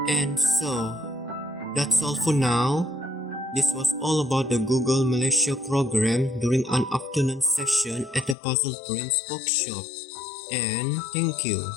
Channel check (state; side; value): drops out; right; at 8.3 s